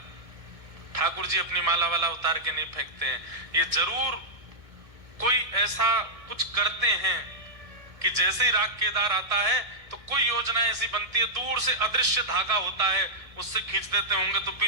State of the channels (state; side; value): late; left; 1.6 ms